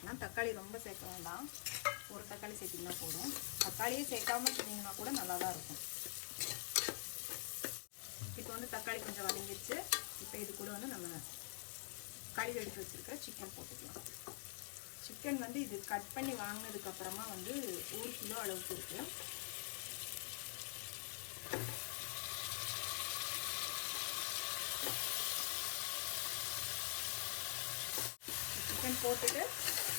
தக்காளி ரொம்ப சேர்க்க வேண்டாம், ஒரு தக்காளி சேர்த்திங்கன்னா போதும். தக்காளியே சேர்க்காம சொன்னீங்கன்னா கூட நல்லா தான் இருக்கும். இப்போ வந்து தக்காளி கொஞ்சம் வதங்கிடுச்சு. இப்போ இது கூட வந்து நம்ம கழுவி எடுத்து வச்சுருக்க சிக்கன் போட்டுக்கலாம். சிக்கன் வந்து இது கட் பண்ணி வாங்கினதுக்கப்புறமா வந்து 1 கிலோ அளவுக்கு இருக்குது. சிக்கன் போட்டுட்டு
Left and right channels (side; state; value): right; silent; digital silence